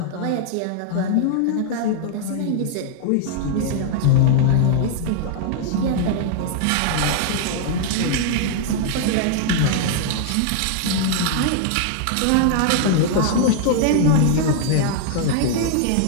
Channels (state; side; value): different; both; correlation -0.01